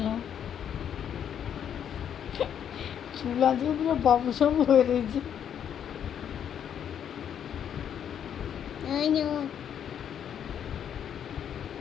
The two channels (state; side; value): quieter; right; 9.0 dB